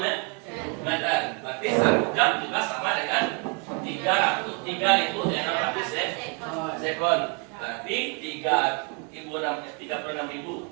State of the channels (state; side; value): quieter; left; 33.4 dB